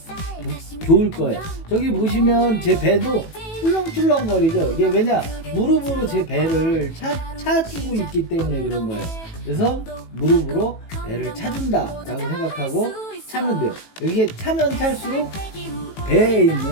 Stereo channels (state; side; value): late; right; 18 ms